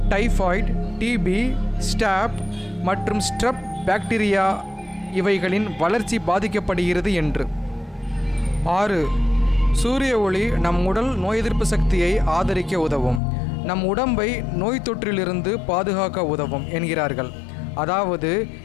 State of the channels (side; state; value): right; drops out; at 13.2 s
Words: டைஃபாய்டு, டிபி, ஸ்டாப் மற்றும் ஸ்ட்ரெப் பாக்டீரியா இவைகளின் வளர்ச்சி பாதிக்கப்படுகிறது என்று. 6. சூரிய ஒளி நம் உடல் நோய் எதிர்ப்பு சக்தியை ஆதரிக்க உதவும். நம் உடம்பை நோய் தொற்றிலிருந்து பாதுகாக்க உதவும் என்கிறார்கள். அதாவது